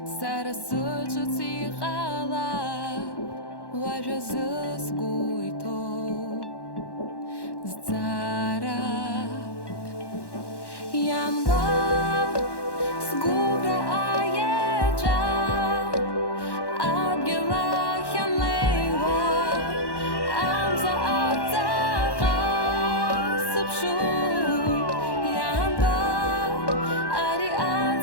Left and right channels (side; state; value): right; late; 1.1 ms